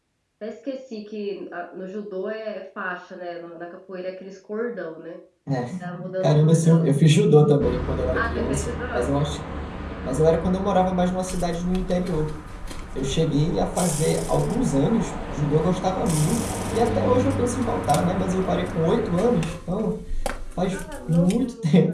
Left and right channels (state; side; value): identical; both; correlation 1.00